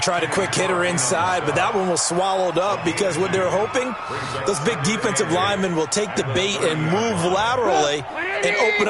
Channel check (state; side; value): identical; both; correlation 1.00